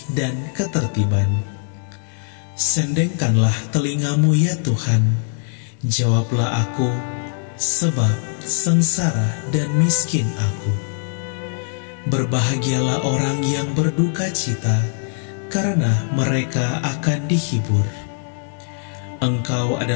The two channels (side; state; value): right; silent; digital silence